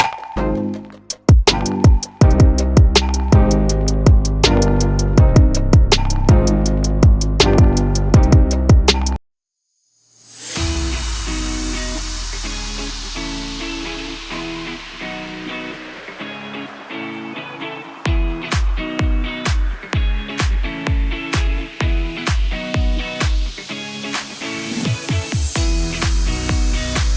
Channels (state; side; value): identical; both; correlation 1.00